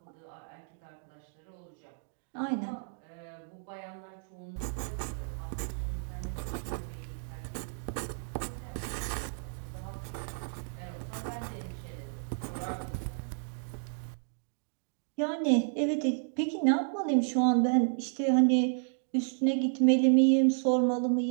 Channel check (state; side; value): silent; left; digital silence